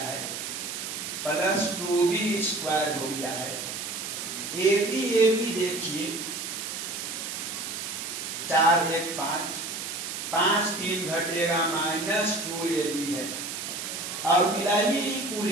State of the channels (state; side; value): noise; right; hiss, 6 dB below the sound